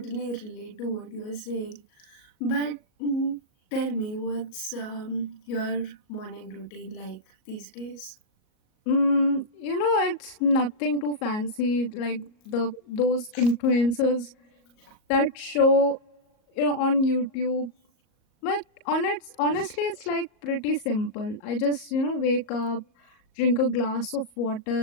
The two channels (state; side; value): late; right; 38 ms